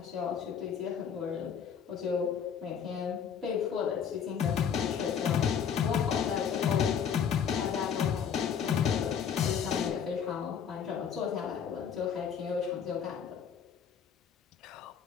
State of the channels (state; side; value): quieter; right; 7.6 dB